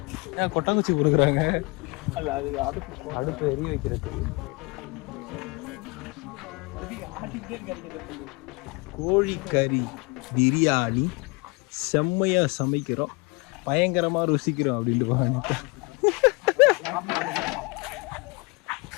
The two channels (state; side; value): quieter; right; 27.8 dB